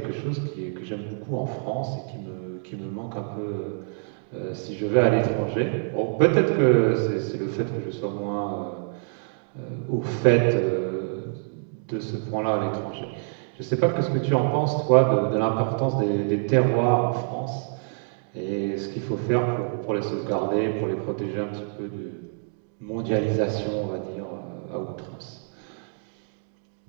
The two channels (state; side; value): silent; left; 61 dB below the other